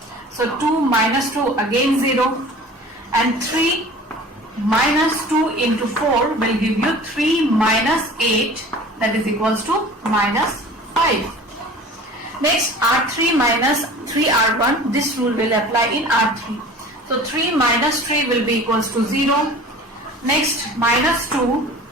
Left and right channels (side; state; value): both; normal; correlation 0.42